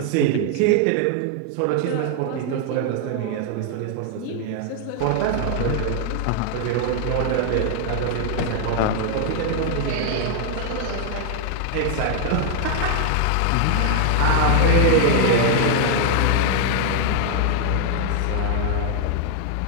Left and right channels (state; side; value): different; both; correlation 0.00